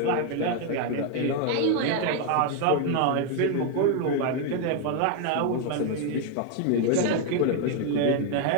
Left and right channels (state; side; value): different; both; correlation 0.01